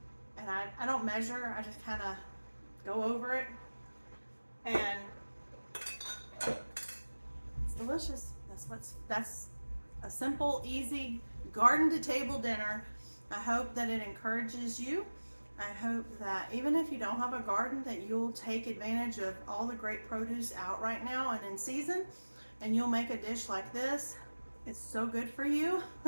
And I don't measure, I just kind of go over it. And it's delicious. That's a simple, easy garden to table dinner. I hope that it encourages you. I hope that even if you don't have a garden, that you'll take advantage of all the great produce out right now and in season, and you'll make a dish like this. It's so good for you.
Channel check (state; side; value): inverted; both; correlation -1.00